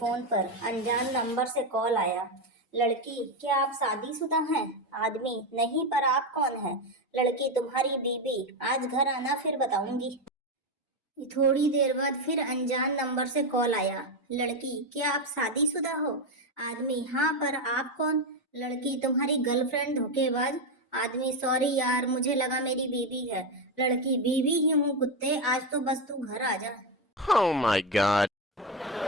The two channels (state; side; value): normal; both; correlation 0.10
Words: पर अनजान नंबर से कॉल आया। लड़की, क्या आप शादीशुदा हैं? आदमी, नहीं, पर आप कौन हैं? लड़की, तुम्हारी बीवी। आज घर आना, फिर बताऊंगी। थोड़ी देर बाद फिर अनजान नंबर से कॉल आया। लड़की, क्या आप शादीशुदा हो? आदमी, हाँ, पर आप कौन? लड़की, तुम्हारी गर्लफ्रेंड धोखेबाज। आदमी, सॉरी यार, मुझे लगा मेरी बीवी है। लड़की, बीवी ही हूँ कुत्ते, आज तो बस तू घर आ जा। Oh my god.